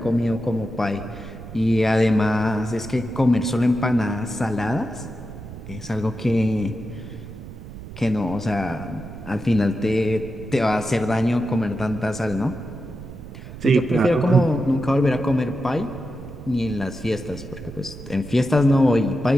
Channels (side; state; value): right; noise; rumble, 14 dB below the sound